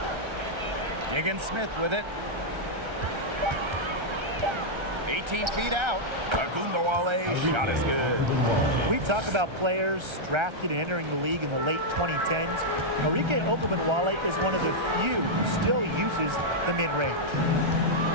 Diggins-Smith with it. 18 feet out. Agumbawale, shot is good. We talk about players drafted and entering the league in the late 2010s. Arike Ogunbowale is one of the few who still uses the mid-range.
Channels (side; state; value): left; late; 1.3 ms